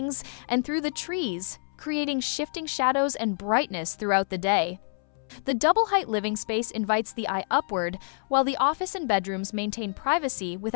and through the trees, creating shifting shadows and brightness throughout the day. The double-height living space invites the eye upward, while the office and bedrooms maintain privacy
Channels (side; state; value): right; silent; 60 dB below the other